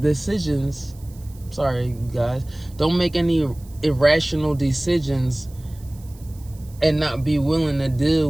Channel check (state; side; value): noise; right; hiss, 25 dB below the sound